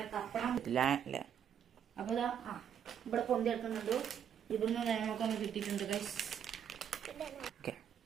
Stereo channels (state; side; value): quieter; left; 8.7 dB